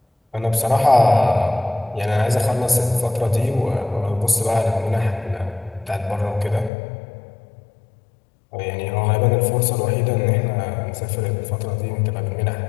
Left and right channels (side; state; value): right; drops out; at 6.7 s